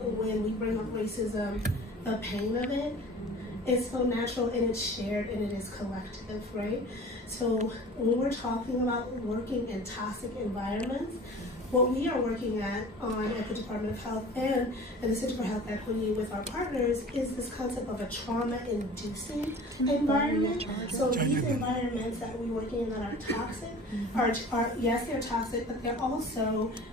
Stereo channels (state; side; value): normal; both; correlation 0.42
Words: when we bring up racism. The pain of it is so natural, and it's shared, and it is collective, right? So when we're talking about working in toxic environments, what we are working at the Department of Health and the Center for Health Equity with our partners is this concept of a trauma-inducing environment. So these environments that we're working in that are toxic are yes, they're toxic, but they're also